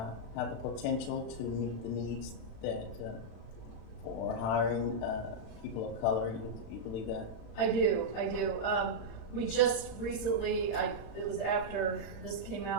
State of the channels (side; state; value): right; late; 36 ms